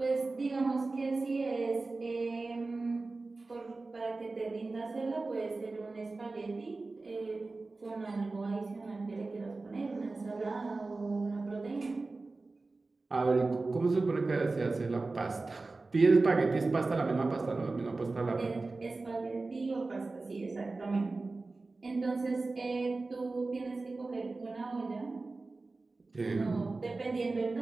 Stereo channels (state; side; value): quieter; left; 3.5 dB